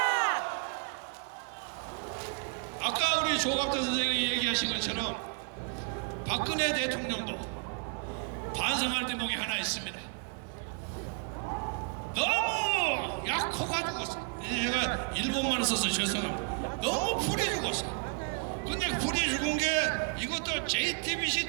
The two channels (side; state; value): left; quieter; 38.9 dB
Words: 아까 우리 조갑대 선생님이 얘기하신 것처럼 박근혜 대통령도 반성할 대목이 하나 있습니다. 너무 약해가지고, 제가 일본말을 써서 죄송합니다. 너무 불이 죽었어. 근데 불이 죽은 게 이것도 JTBC